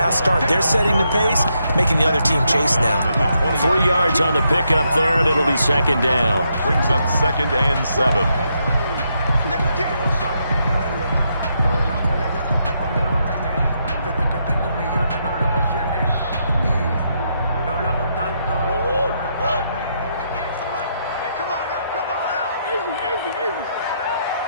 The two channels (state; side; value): inverted; both; correlation -0.79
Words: start. They're setting the pace, making the other team chase now. 3 yards on the pickup there, and it'll be second down. Brings up 2nd and 7.